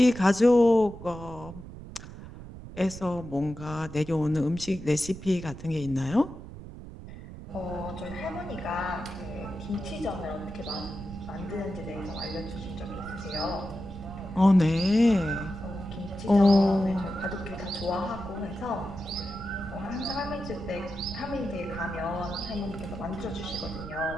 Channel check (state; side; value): noise; right; rumble, 13 dB below the sound